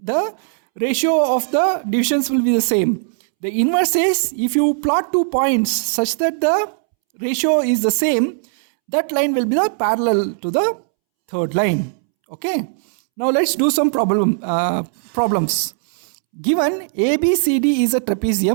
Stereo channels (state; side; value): silent; left; 67 dB below the other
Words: the ratio of the divisions will be the same. The inverse is if you plot 2 points such that the ratio is the same, that line will be the parallel to the third line. Okay. Now let's do some problems. Given ABCD is a